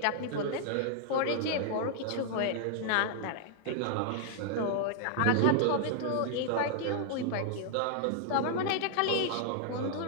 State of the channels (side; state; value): both; different; correlation 0.00